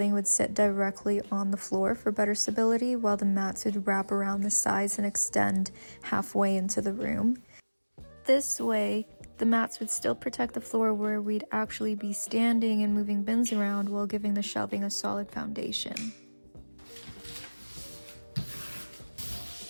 would sit directly on the floor for better stability, while the mats would wrap around the sides and extend halfway into the room. This way, the mats would still protect the floor where we'd actually be standing and moving bins around while giving the shelving a solid foundation.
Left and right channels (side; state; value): both; inverted; correlation -1.00